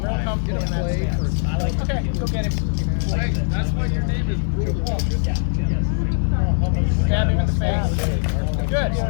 comfortable in that stance. Okay, go get him. That's why your name is Brutal. Stab him in the face. Good. Oh,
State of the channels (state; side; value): silent; right; digital silence